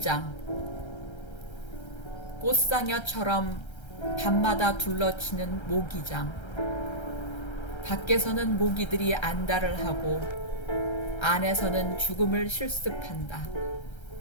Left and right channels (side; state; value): right; late; 1.3 ms